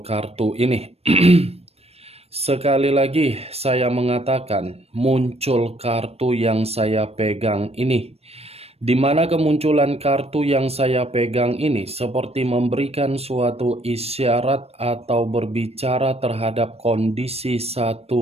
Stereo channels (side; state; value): left; late; 0.29 ms